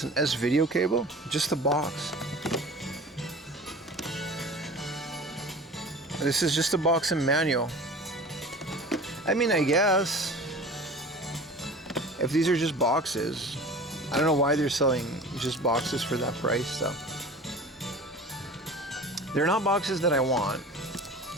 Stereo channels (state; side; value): normal; both; correlation 0.39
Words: an S video cable? Just the box. This is just a box and manual. I mean, I guess if these are just boxes, I don't know why they're selling just boxes for that price though. They're not boxes that I want.